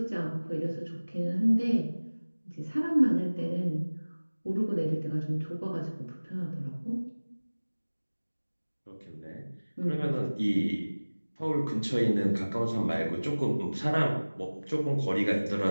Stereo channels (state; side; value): inverted; both; correlation -1.00